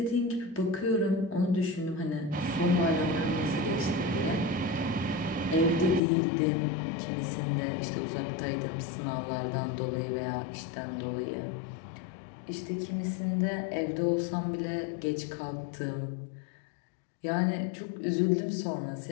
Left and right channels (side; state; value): right; drops out; at 6.0 s